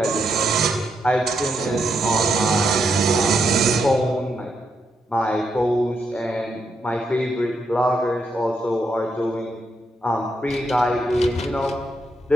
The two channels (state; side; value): normal; both; correlation 0.80